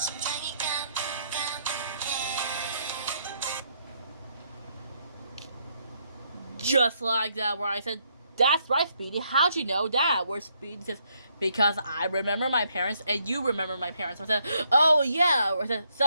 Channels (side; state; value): both; inverted; correlation -0.74